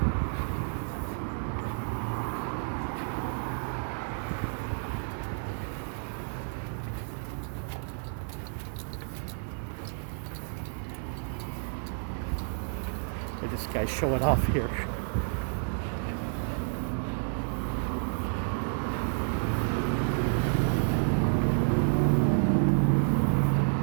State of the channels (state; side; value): silent; left; 58 dB below the other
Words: And this guy's showing off here.